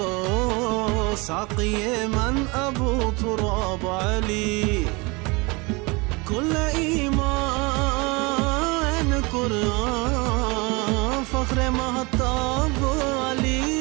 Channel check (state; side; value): quieter; left; 26.7 dB